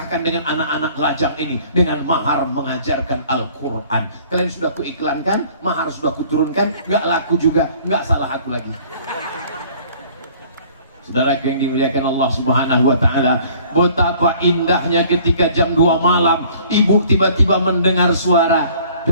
dengan anak-anak lajang ini dengan mahar mengajarkan Al-Quran. Kalian sudah kuiklankan, mahar sudah kuturunkan, gak laku juga, gak salah aku lagi. Saudara yang dimuliakan Allah Subhanahu wa taala, betapa indahnya ketika jam 2 malam ibu tiba-tiba mendengar suara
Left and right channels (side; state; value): both; inverted; correlation -0.53